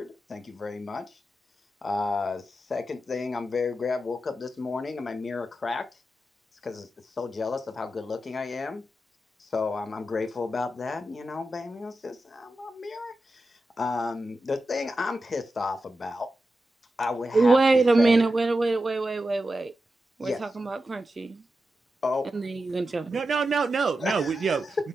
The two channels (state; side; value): normal; both; correlation 0.90